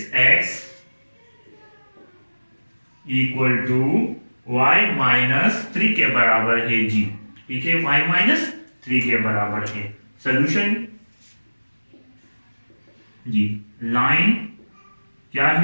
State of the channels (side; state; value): both; inverted; correlation -1.00